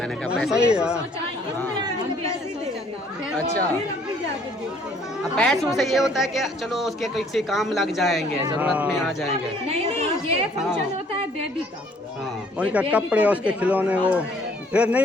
मैंने कहा पैसे सही दे। है। अच्छा, अब पैसों से ये होता है कि चलो उसके किसी काम लग जाएंगे, जरूरत में आ जाएंगे। नहीं ये फंक्शन होता है बेबी का। हाँ, उनका कपड़े उसके खिलौने वो फिर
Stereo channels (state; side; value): normal; both; correlation 0.60